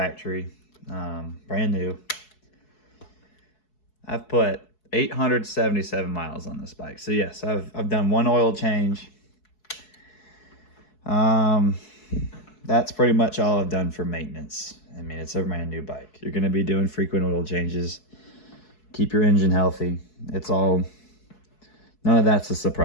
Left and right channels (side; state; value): right; late; 4.7 ms